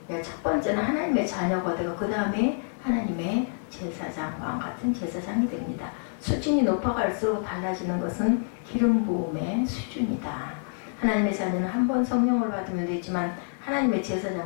첫 번째는 하나님의 자녀가 되고 그 다음에 하나님의 제사장, 왕같은 제사장이 됩니다. 수준이 높아갈수록 달라지는 것은 기름 부음의 수준이다. 하나님의 자녀는 한 번 성령을 받으면 되지만 하나님의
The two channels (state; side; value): silent; right; 60 dB below the other